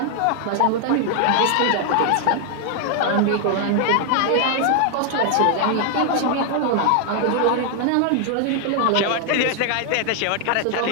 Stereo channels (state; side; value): different; both; correlation 0.00